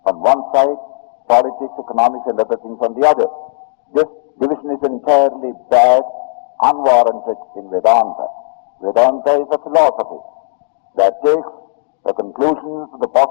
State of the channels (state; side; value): silent; right; 70 dB below the other